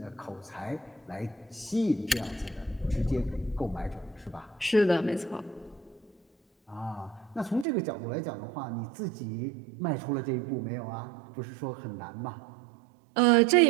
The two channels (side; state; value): left; drops out; at 7.7 s